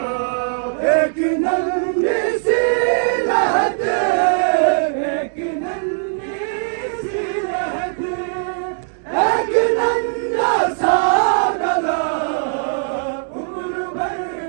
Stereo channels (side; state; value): left; silent; digital silence